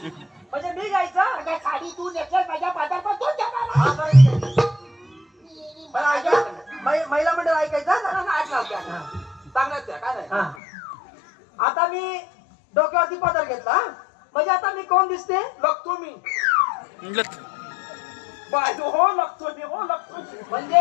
म्हणजे मी घ्यायचा? अगं साडी तू नेसल्यास माझ्या पदर पण तू घेणार. पण ऐका, महिला मंडळ ऐकायचं चांगलाच काय नाही. आता मी डोक्यावरती पदर घेतला, म्हणजे आता मी कोण दिसते? लागतो मी बाजू हो लागतो मी हो लागतो.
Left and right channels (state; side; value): drops out; right; at 10.6 s